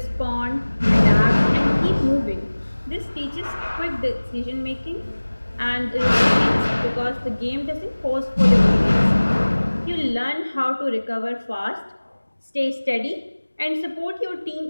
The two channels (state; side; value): inverted; both; correlation -1.00